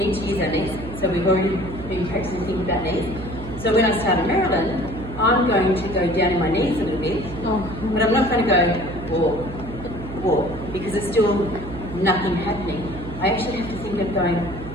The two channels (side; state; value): right; noise; hum, 11 dB below the sound